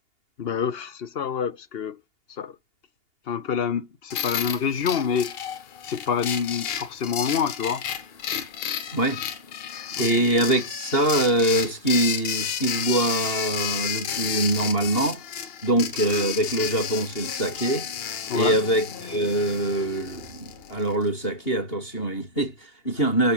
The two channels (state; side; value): late; right; 2.8 ms